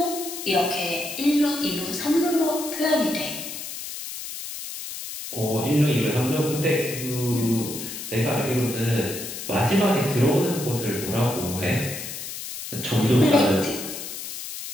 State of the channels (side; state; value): left; noise; hiss, 8 dB below the sound